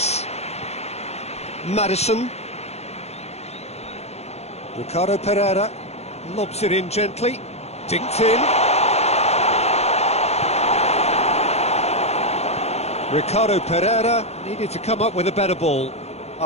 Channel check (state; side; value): late; right; 0.31 ms